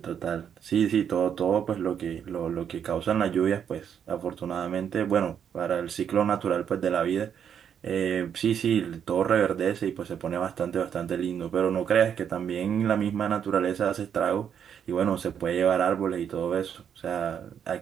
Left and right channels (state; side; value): quieter; left; 8.3 dB